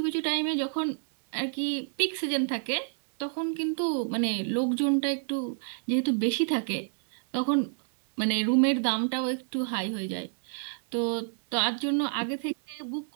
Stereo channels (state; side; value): silent; left; 59 dB below the other